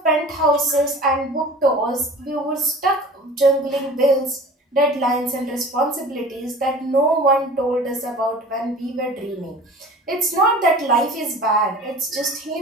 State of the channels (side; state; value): both; normal; correlation 0.41